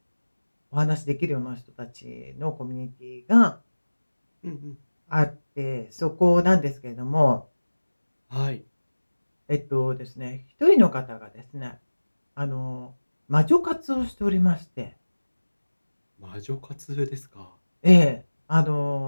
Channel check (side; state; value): both; inverted; correlation -1.00